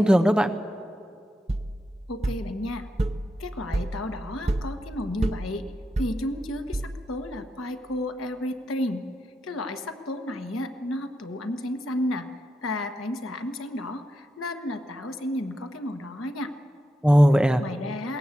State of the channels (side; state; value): both; normal; correlation 0.86